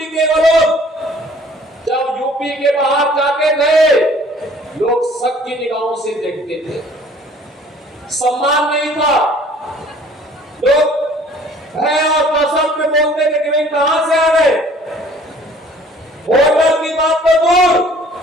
के लोग जब यूपी के बाहर जाते थे, लोग शक की निगाहों से देखते थे, सम्मान नहीं था, लोग भय और दहशत में बोलते थे कि भाई कहां से आ गए। होटल की बात तो दूर,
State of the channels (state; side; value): normal; both; correlation 0.54